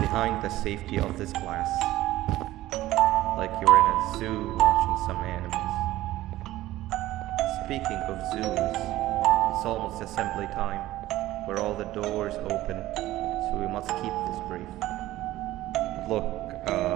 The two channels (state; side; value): quieter; left; 15.8 dB